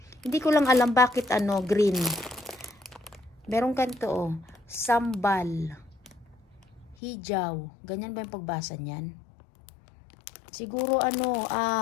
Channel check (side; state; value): right; drops out; at 7.0 s